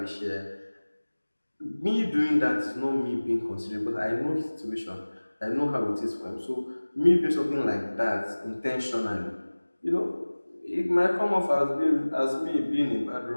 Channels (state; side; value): inverted; both; correlation -1.00